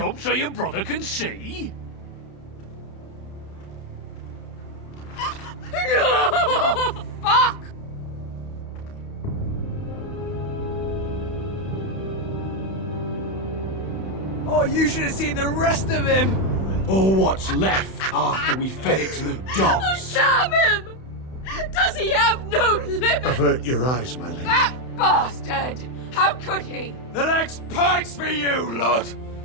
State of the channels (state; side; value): late; right; 31 ms